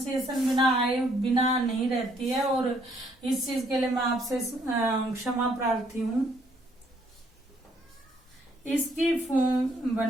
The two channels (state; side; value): normal; both; correlation 0.67